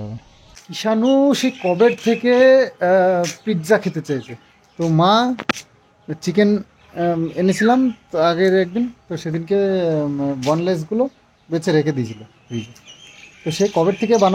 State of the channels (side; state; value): both; identical; correlation 1.00